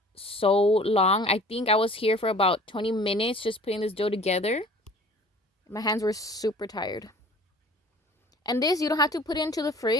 so long. I think I was here for about 20 minutes just putting this dough together. My hands were super tired. And this, you don't have to put it into the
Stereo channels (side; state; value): both; normal; correlation 0.48